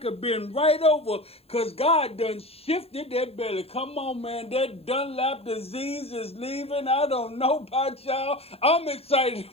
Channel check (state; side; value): late; right; 0.29 ms